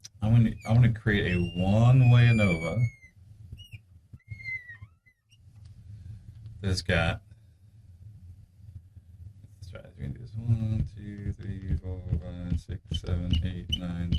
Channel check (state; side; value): identical; both; correlation 1.00